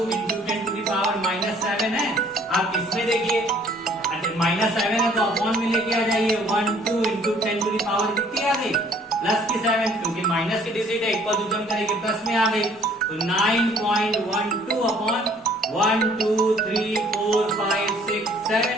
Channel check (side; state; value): both; normal; correlation 0.59